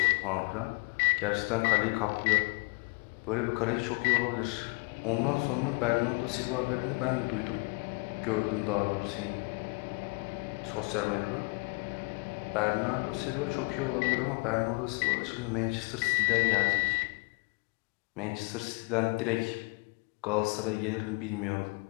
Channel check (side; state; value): right; quieter; 31.1 dB